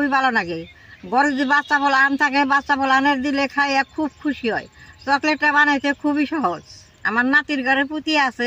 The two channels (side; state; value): both; identical; correlation 1.00